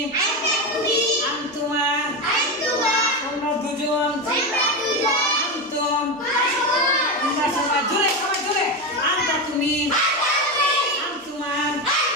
আনতুমা তোমরা দুজন, আনতুম তোমরা সবাই। জোরে সবাই জোরে। আনতা তুমি, আনতুমা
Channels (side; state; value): both; normal; correlation 0.15